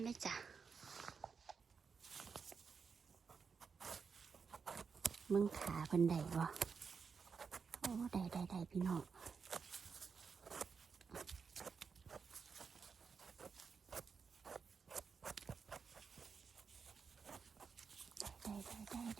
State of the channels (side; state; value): left; quieter; 5.7 dB